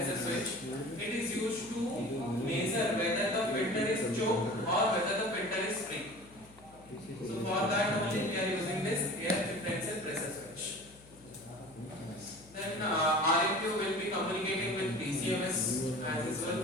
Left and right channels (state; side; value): noise; left; hum, 24 dB below the sound